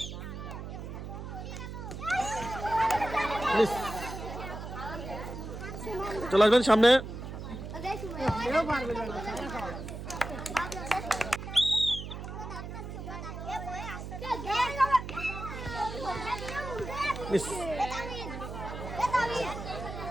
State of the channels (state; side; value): noise; right; hum, 8 dB below the sound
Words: চলে আসবেন সামনে।